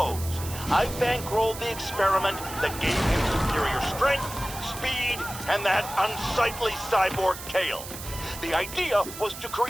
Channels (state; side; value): noise; right; hiss, 11 dB below the sound